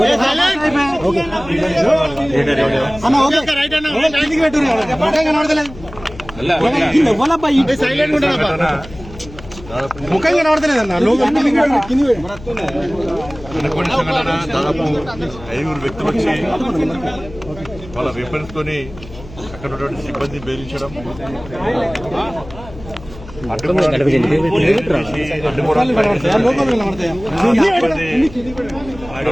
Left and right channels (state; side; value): noise; left; hum, 17 dB below the sound